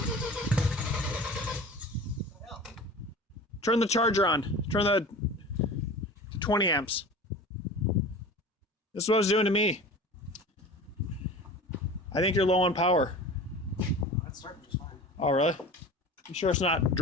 Turn the charger on. Turn the 20 amps. This is what it's doing to me. I think you're low on power. That's starting just fine. Oh, really? You sure it's not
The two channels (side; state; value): both; normal; correlation 0.37